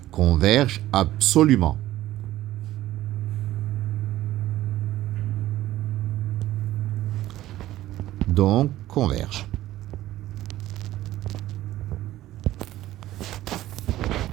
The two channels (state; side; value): quieter; left; 14.9 dB